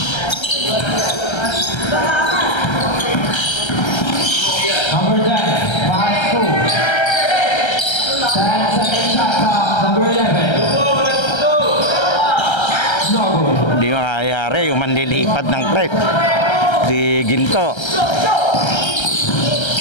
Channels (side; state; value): right; late; 1.3 ms